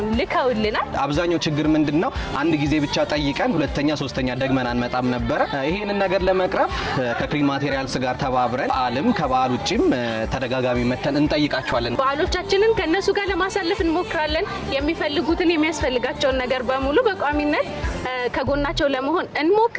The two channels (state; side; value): identical; both; correlation 1.00